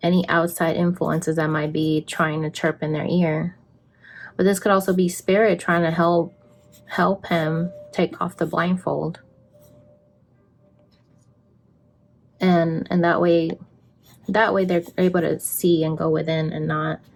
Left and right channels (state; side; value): identical; both; correlation 1.00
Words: any outside influences that might be trying to chirp in their ear. But this could also be spirit trying to help him take off the blindfold. And that way they're able to see and go within and not